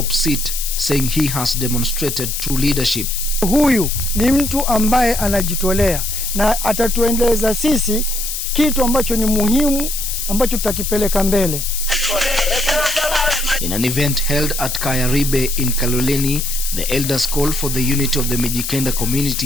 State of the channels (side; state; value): left; noise; hiss, 4 dB below the sound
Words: seat, saying he has demonstrated true leadership. Huyu ni mtu ambaye anajitolea na atatuendeleza sisi kitu ambacho ni muhimu ambacho tutakipeleka mbele. In an event held at Kaya Ribe in Kaloleni, the elders called for the unity of the MIJIKENDA